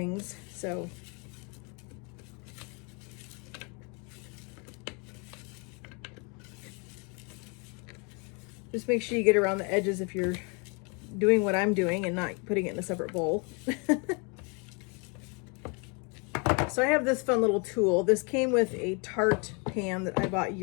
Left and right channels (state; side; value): quieter; right; 33.6 dB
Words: So just make sure you get around the edges if you're doing what I'm doing and not putting it in a separate bowl. So I have this fun little tool. This came with a tart pan that I bought